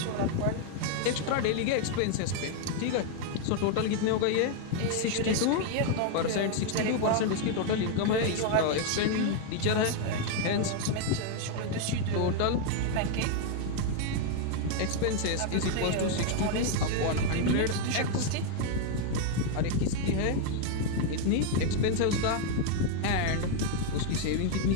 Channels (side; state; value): both; different; correlation 0.00